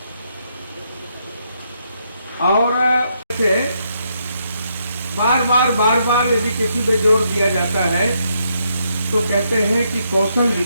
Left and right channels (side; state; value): both; inverted; correlation -0.77